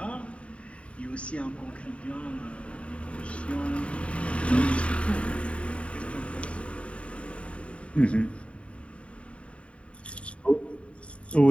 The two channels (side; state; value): right; late; 0.062 ms